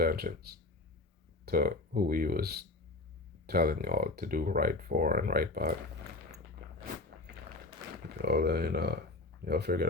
to who he was telling y'all to do right for and right by? Y'all figure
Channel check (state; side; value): quieter; right; 3.0 dB